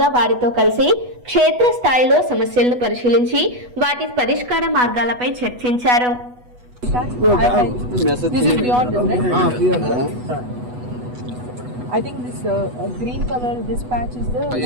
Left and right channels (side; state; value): left; late; 8.1 ms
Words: వారితో కలిసి క్షేత్ర స్థాయిలో సమస్యలను పరిశీలించి వాటి పరిష్కార మార్గాలపై చర్చించారు. This is beyond this, right? I think this green color, this patch is the